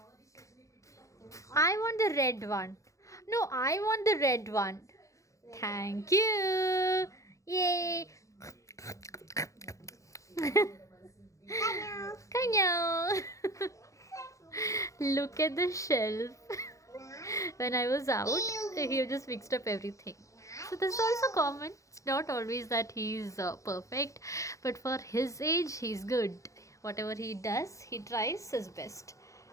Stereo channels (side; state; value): right; late; 0.15 ms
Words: I want the red one. No, I want the red one. Thank you. Yay. Kano. Kanyo. Look at the shelf. When I was out, he just mixed up everything. So this is also common. It's not always that he's perfect, but for his age, he's good. Whatever he does, he tries his best.